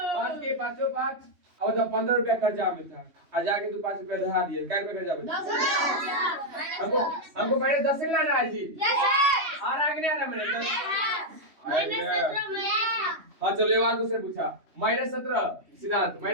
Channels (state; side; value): late; left; 3.1 ms